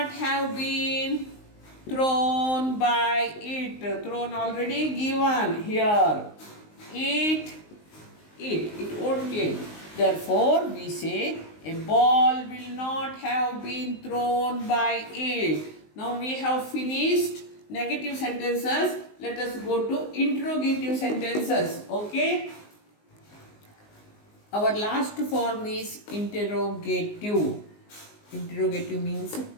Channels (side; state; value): right; late; 19 ms